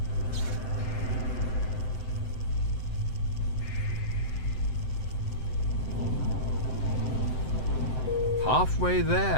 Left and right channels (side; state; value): right; late; 7.8 ms